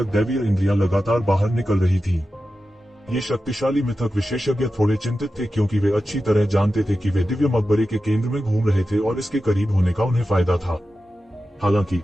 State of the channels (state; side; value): normal; both; correlation 0.92